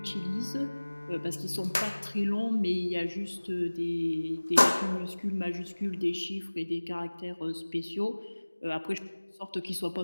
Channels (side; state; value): both; inverted; correlation -1.00